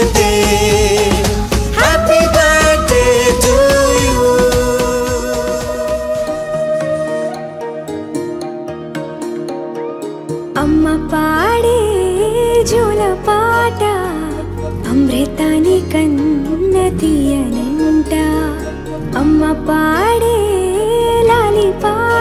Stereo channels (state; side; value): identical; both; correlation 1.00